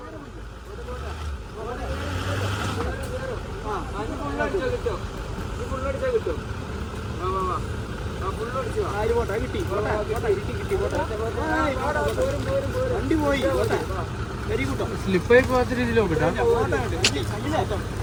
സ്ലിപ്പായി പോകാത്ത രീതിയിൽ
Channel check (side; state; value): both; identical; correlation 1.00